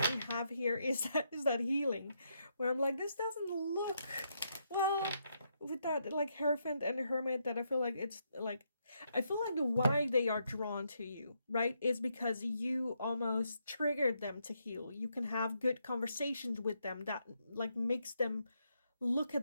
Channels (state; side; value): inverted; both; correlation -0.79